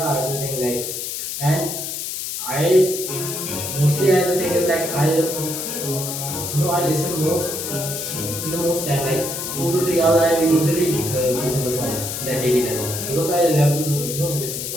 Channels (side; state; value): left; noise; hiss, 5 dB below the sound